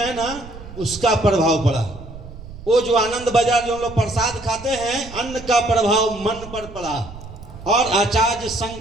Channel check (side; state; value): right; noise; rumble, 15 dB below the sound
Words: ना, उसका प्रभाव पड़ा। वो जो आनंद बाजार जो हम लोग प्रसाद खाते हैं, अन्न का प्रभाव मन पर पड़ा और आचार्य